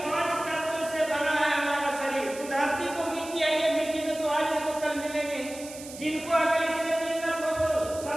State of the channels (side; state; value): right; noise; hiss, 14 dB below the sound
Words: 5 तत्वों से बना है हमारा शरीर। तो धरती को मिट्टी है, ये मिट्टी में तो आज नहीं तो कल मिलेंगे। जिनको अगर इससे दिक्कत हो तो